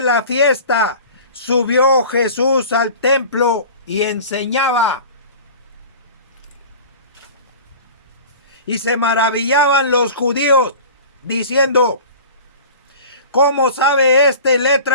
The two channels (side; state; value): both; inverted; correlation -0.39